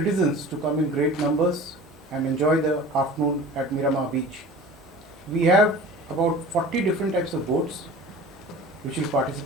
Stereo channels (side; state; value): both; normal; correlation 0.40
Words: to come in great numbers and enjoy the afternoon at Miramar Beach. We have about 40 different types of boats which will